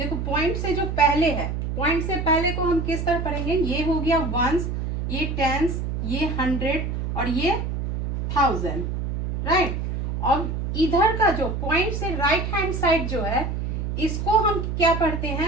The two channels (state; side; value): noise; right; hum, 3 dB below the sound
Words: पॉइंट से जो पहले है, पॉइंट से पहले को हम किस तरह पढ़ेंगे। ये हो गया वंस, ये टेंस, ये 100 और ये 1000, राइट। अब इधर का जो पॉइंट से राइट हैंड साइड जो है इसको हम क्या पढ़ते